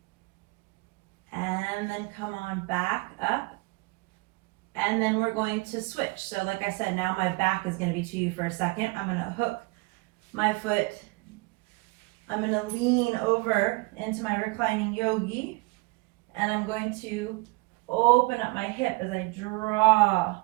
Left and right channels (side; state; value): left; quieter; 25.9 dB